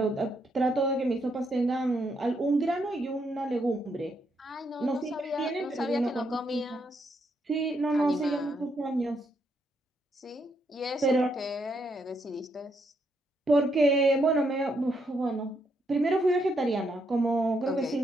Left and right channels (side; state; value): both; normal; correlation 0.76